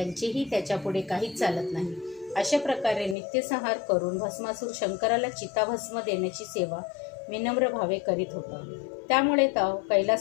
त्याच्यापुढे काहीच चालत नाही. अशा प्रकारे नित्यसंहार करून भस्मासूर शंकराला चिताभस्म देण्याची सेवा विनम्र भावे करीत होता. त्यामुळे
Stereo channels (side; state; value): right; drops out; at 3.2 s